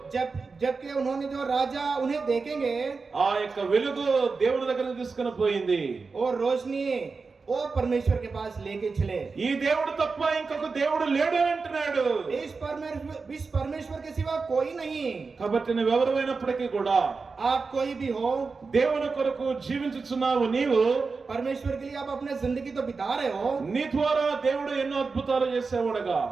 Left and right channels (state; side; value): quieter; left; 4.5 dB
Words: जबकि उन्होंने जो राजा उन्हें देखेंगे, ఆ యొక్క వెలుగు దేవుని దగ్గరికి తీసుకుని పోయింది. और रोशनी वो परमेश्वर के पास लेके चले। ఈ దేవుడు తప్ప ఇంకొక దేవుడు లేడు అని అంటున్నాడు. इस परमेश्वर के सिवा कोई नहीं। కాబట్టి నువ్వెవరైనప్పటికీ కూడా आप कोई भी हो, దేవుని కొరకు జీవించుచున్నావు. నీవు परमेश्वर के लिए आप अपने जिंदगी तो बिता रहे हो। నీ ద్వారా దేవుడు ఎన్నో అద్భుతాలు చేసేవాడుగా